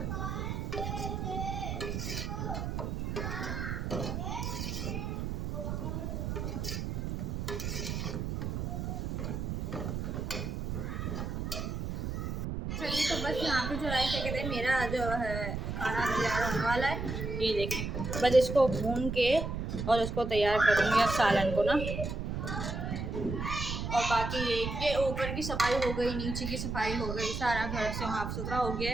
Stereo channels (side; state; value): right; noise; rumble, 3 dB below the sound